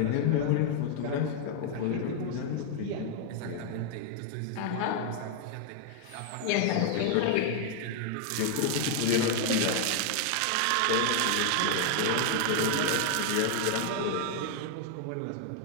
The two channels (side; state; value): both; different; correlation 0.00